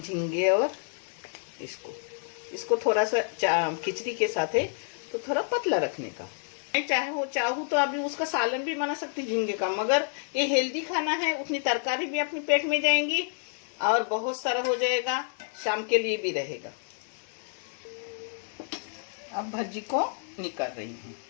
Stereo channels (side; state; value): right; silent; 56 dB below the other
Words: और इसको थोड़ा सा खिचड़ी के साथ है तो थोड़ा पतला रखने का। मैं चाहूँ तो अभी उसका सालन भी बना सकती झींगे का, मगर ये हेल्दी खाना है, उतनी तरकारी भी अपने पेट में जाएंगी और बहुत सारा हो जाएगा, शाम के लिए भी रहेगा। अब भज्जी को निकाल रही हूँ।